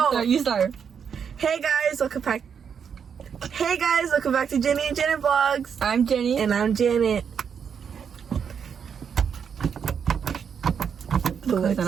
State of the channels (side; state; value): left; quieter; 7.2 dB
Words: You start. Hey guys, welcome back. Hey guys, welcome back to Jenny and Janet Vlogs. I'm Jenny. And I'm Janet. The lights